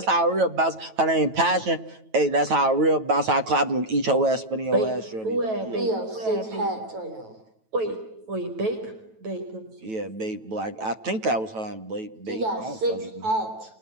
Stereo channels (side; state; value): left; late; 9.2 ms